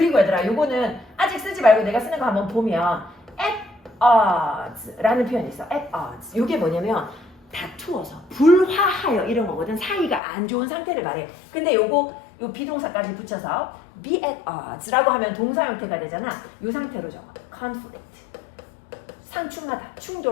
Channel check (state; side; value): drops out; right; at 10.2 s